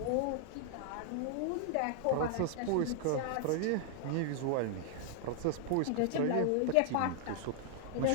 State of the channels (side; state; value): both; different; correlation 0.00